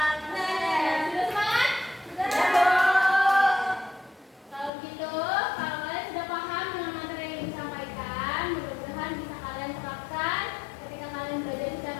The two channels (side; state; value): right; drops out; at 4.7 s